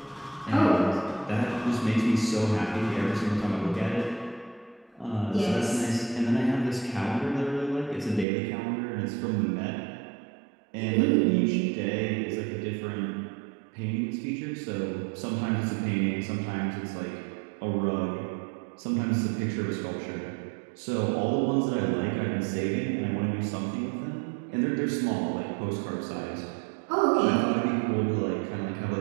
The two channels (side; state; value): left; drops out; at 8.2 s